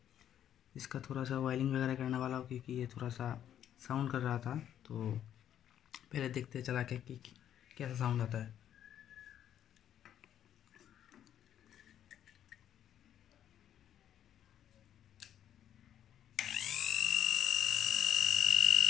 इसका थोड़ा सा वायरिंग वगैरह करने वाला हूँ, क्योंकि ये थोड़ा सा साउंड कर रहा था। तो पहले देखते चला के कि कैसा साउंड आता है।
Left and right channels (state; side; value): quieter; right; 10.3 dB